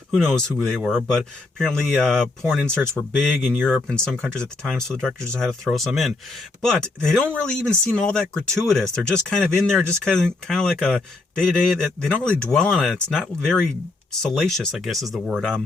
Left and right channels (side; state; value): right; quieter; 3.2 dB